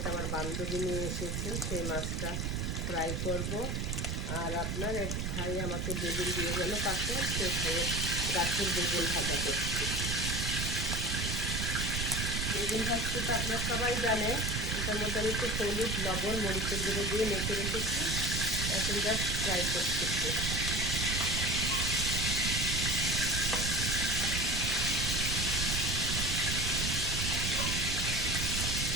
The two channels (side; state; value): right; noise; rumble, 1 dB below the sound